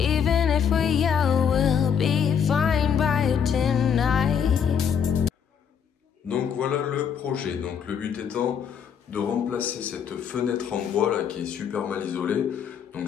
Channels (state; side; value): quieter; right; 7.6 dB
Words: if we yell, we'll be fine by tonight. Donc voilà le projet. Donc le but étant de remplacer cette fenêtre en bois là qui est super mal isolée. Donc